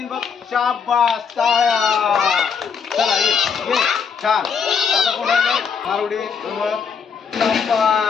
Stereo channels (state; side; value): quieter; right; 6.3 dB